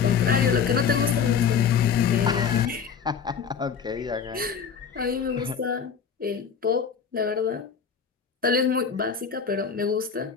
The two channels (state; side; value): quieter; right; 6.7 dB